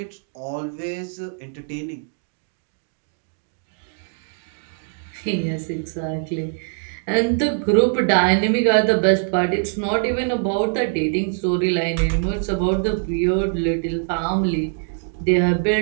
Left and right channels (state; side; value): silent; left; digital silence